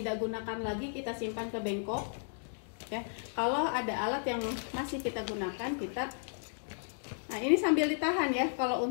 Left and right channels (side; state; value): right; silent; digital silence